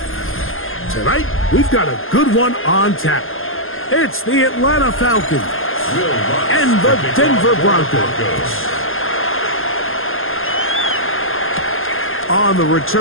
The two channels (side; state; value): right; late; 0.60 ms